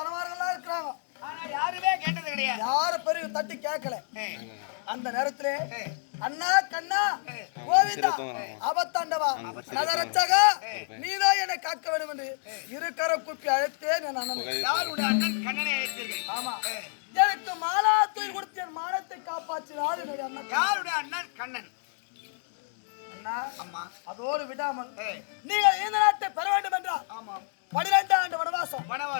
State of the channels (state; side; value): silent; right; digital silence